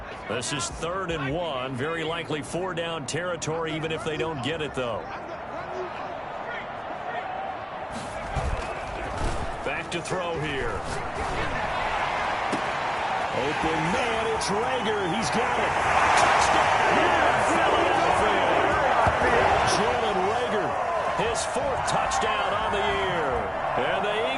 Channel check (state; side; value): identical; both; correlation 1.00